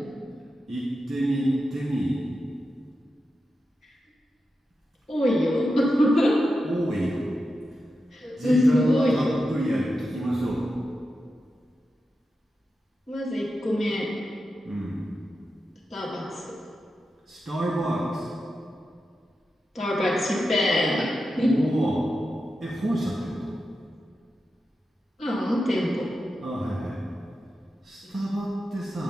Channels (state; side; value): normal; both; correlation 0.90